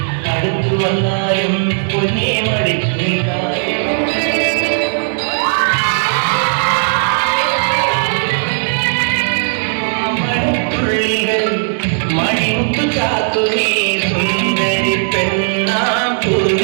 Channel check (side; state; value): left; silent; digital silence